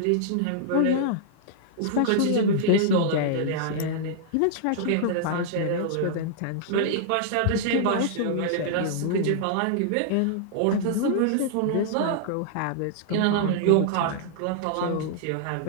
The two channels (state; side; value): different; both; correlation -0.01